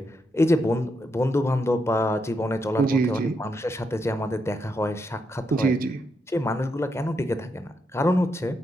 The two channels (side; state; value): both; normal; correlation 0.81